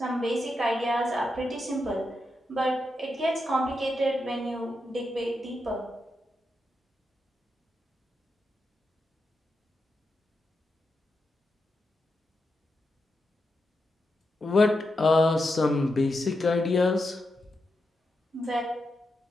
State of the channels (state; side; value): normal; both; correlation 0.86